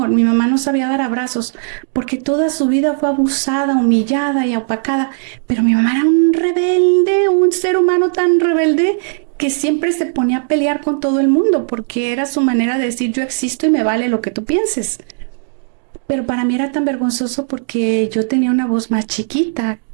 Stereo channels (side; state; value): left; silent; digital silence